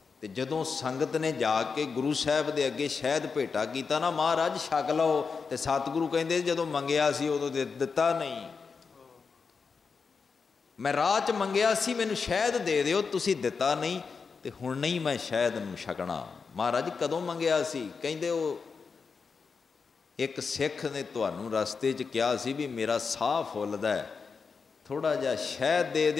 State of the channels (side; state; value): right; quieter; 5.2 dB